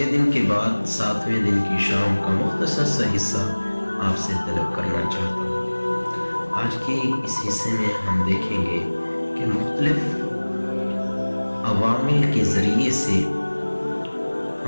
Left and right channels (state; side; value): inverted; both; correlation -1.00